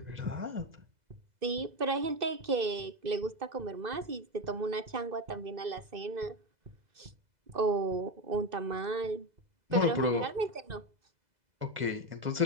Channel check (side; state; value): left; late; 2.0 ms